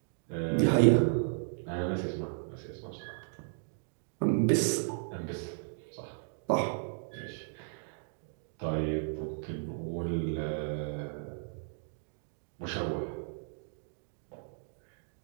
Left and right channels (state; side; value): silent; left; digital silence